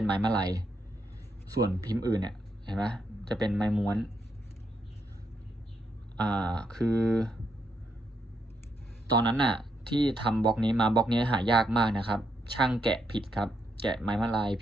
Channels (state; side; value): normal; both; correlation 0.79